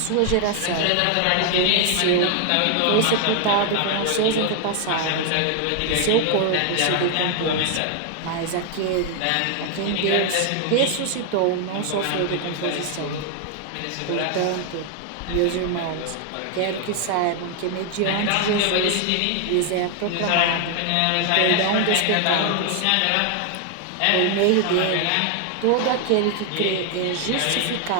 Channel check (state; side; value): different; both; correlation 0.00